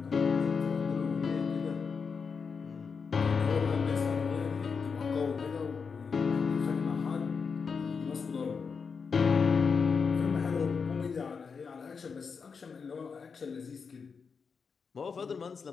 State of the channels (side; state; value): right; quieter; 5.6 dB